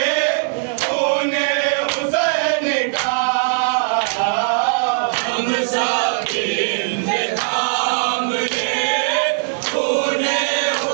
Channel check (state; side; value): silent; left; digital silence